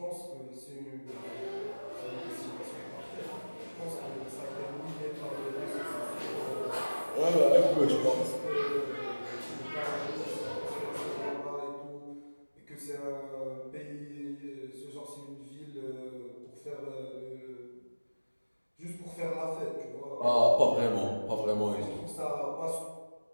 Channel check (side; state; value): both; inverted; correlation -1.00